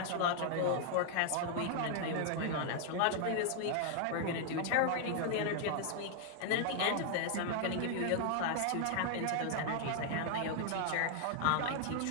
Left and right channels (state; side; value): different; both; correlation 0.00